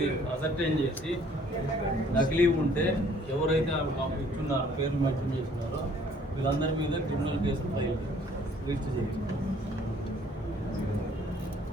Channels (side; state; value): both; normal; correlation 0.59